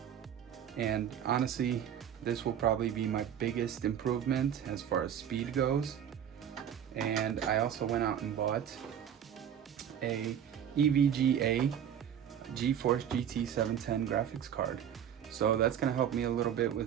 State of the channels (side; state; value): left; quieter; 9.3 dB